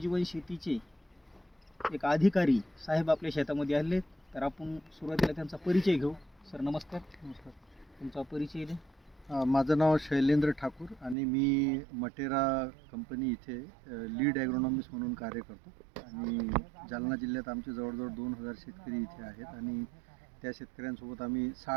शेतीचे एक अधिकारी साहेब आपल्या शेतामध्ये आले. तर आपण सुरुवातीला त्यांचा परिचय घेऊ. सर नमस्कार. नमस्कार. तुमचा परिचय द्या. माझं नाव शैलेंद्र ठाकूर आणि मी मटेरा कंपनी इथे लीड ॲग्रोनॉमिस्ट म्हणून कार्य करतो. आणि जालना जिल्ह्यात आमचे जवळजवळ 2000 शेतकरी इथे आहेत आणि त्या शेतकऱ्यांसोबत आम्ही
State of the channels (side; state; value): left; drops out; at 11.2 s